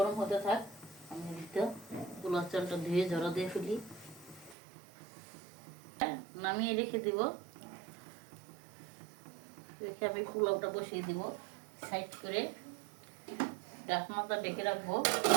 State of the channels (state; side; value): drops out; left; at 4.5 s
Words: হতে থাক, আমি পোলাও চালটা ধুয়ে ঝরা দিয়ে ফেলি। নামিয়ে রেখে দিব। রেখে আমি পোলাওটা বসিয়ে দিব সাইড করে, ঢাকনাটা ঢেকে রাখবো।